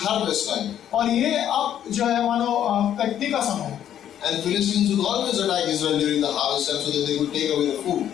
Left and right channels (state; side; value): quieter; right; 10.4 dB